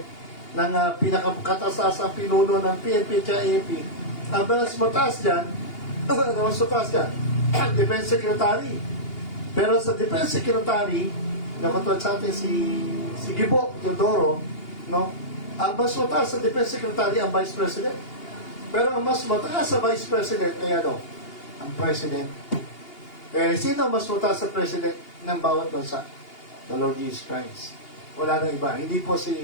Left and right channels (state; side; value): late; right; 2.8 ms